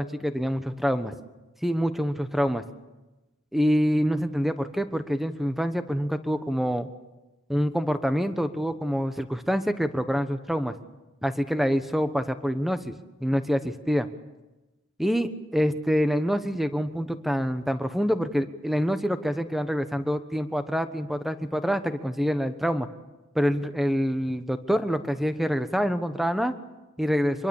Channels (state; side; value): normal; both; correlation 0.95